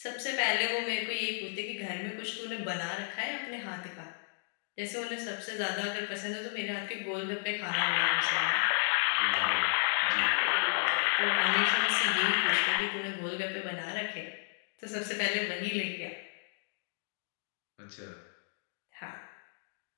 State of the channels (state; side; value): silent; right; digital silence